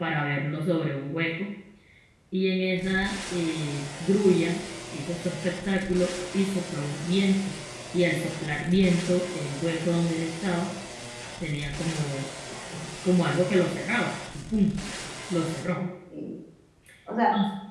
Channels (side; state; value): both; identical; correlation 1.00